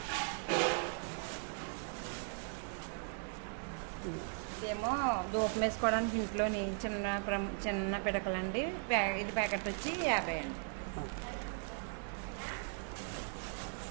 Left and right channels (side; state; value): left; silent; 52 dB below the other